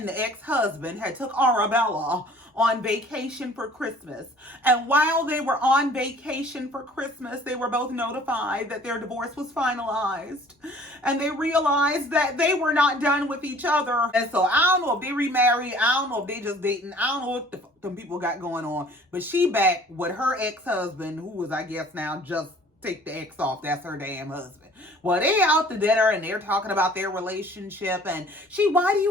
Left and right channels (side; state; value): both; normal; correlation 0.51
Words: the ex-husband had took Arabella on vacation for Christmas. And while they were on vacation for Christmas, they were both notified that their divorce was finalized. And they realized that they were not done with each other. And so I don't know if they remarried. I don't know if they just dating. I don't know what some people got going on. But she back with her ex-husband, who was, I guess now, just take the ex off. That's her damn husband. Well, they out to dinner and they're talking about their relationship. And she, why do